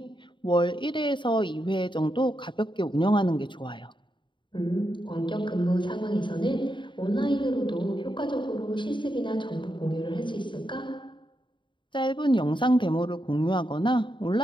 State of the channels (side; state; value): right; late; 0.23 ms